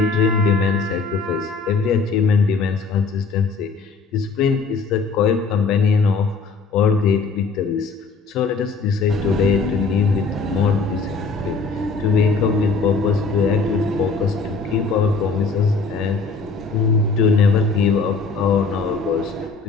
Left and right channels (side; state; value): right; quieter; 4.5 dB